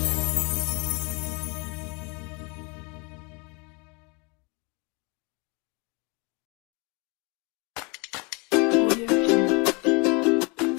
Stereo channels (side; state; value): right; quieter; 30.2 dB